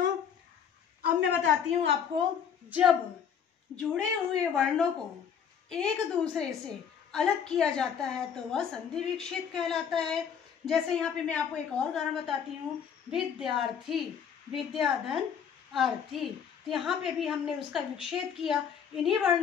अब मैं बताती हूँ आपको, जब जुड़े हुए वर्णों को एक दूसरे से अलग किया जाता है तो वह संधि विच्छेद कहलाता है। जैसे यहाँ पे मैं आपको एक और उदाहरण बताती हूँ। विद्यार्थी, विद्याधन अर्थी। तो यहाँ पे भी हमने उसका विच्छेद किया। इन्हीं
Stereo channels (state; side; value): quieter; right; 7.7 dB